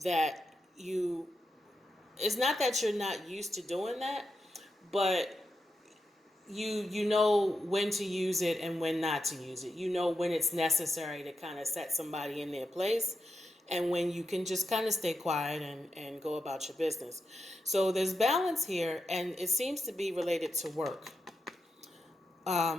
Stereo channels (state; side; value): normal; both; correlation 0.87